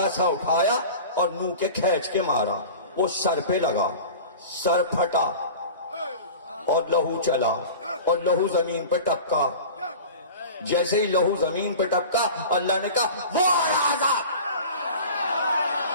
سا اٹھایا اور منہ کے کھینچ کے مارا، وہ سر پہ لگا، سر پھٹا اور لہو چلا اور لہو زمین پہ ٹپکا۔ جیسے ہی لہو زمین پہ ٹپکا اللہ نے کہا وہ راجا،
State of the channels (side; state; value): both; inverted; correlation -0.36